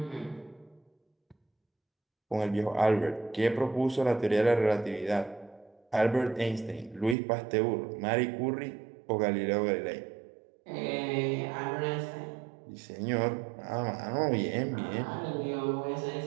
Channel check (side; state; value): left; drops out; at 7.2 s